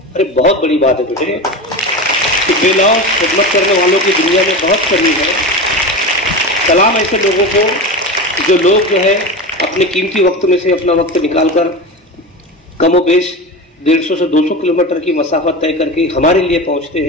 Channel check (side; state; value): both; normal; correlation 0.25